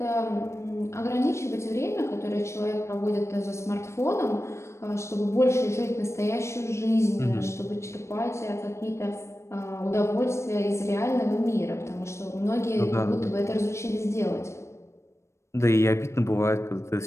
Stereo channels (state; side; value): late; right; 0.13 ms